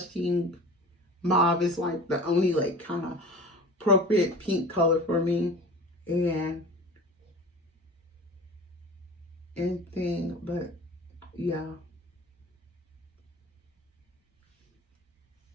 Mauve. It's like the only like kind of appropriate pink color for me. And anything, but yeah.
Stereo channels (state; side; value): normal; both; correlation 0.38